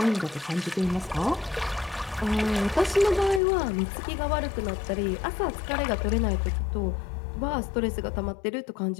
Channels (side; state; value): right; drops out; at 3.4 s